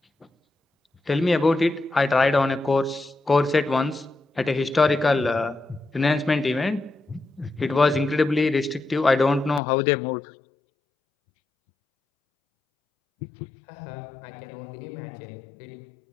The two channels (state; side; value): drops out; right; at 9.6 s